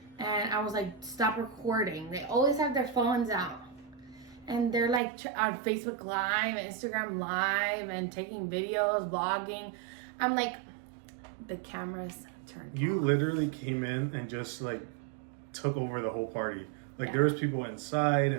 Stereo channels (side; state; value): left; drops out; at 5.0 s